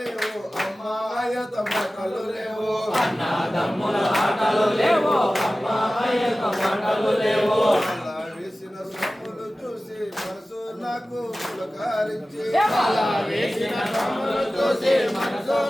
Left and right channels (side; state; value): both; normal; correlation 0.96